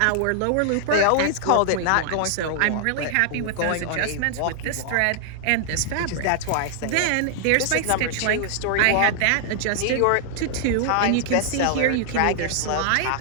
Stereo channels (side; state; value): both; different; correlation -0.01